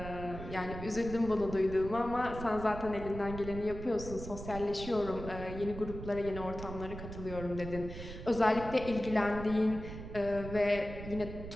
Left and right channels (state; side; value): noise; right; rumble, 10 dB below the sound